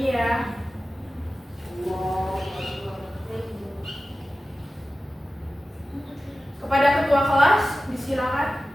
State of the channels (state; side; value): normal; both; correlation 0.94